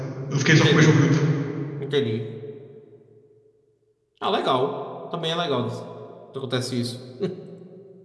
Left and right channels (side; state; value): both; identical; correlation 1.00